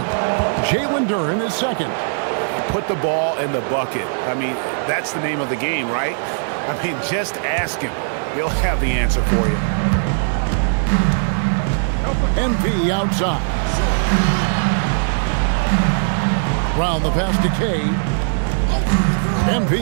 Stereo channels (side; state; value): left; silent; digital silence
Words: Jalen Duren is second. Put the ball in the bucket. I mean, that's the name of the game, right? I mean, just ask him. He'll have the answer for you. MP outside. Brown the pass to Kay.